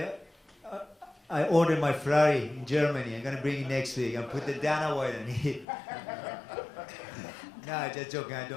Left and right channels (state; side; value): drops out; right; at 5.7 s